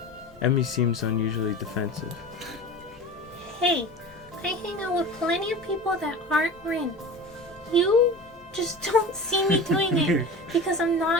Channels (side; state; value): both; normal; correlation 0.34